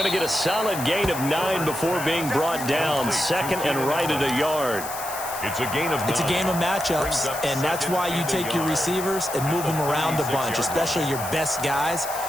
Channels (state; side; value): noise; left; hiss, 9 dB below the sound